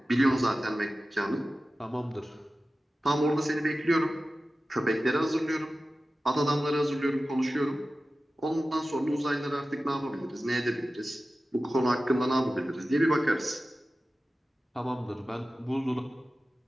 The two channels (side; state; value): both; normal; correlation 0.95